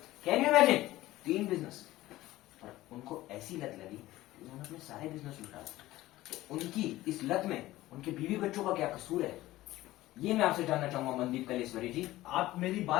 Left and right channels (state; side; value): quieter; right; 16.7 dB